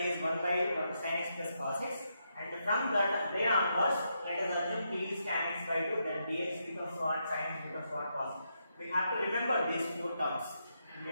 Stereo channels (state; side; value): inverted; both; correlation -0.81